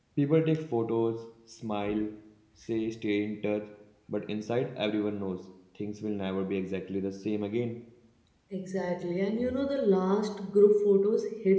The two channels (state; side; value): identical; both; correlation 1.00